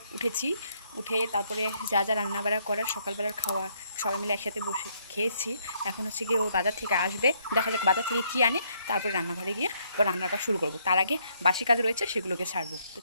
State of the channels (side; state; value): both; inverted; correlation -0.71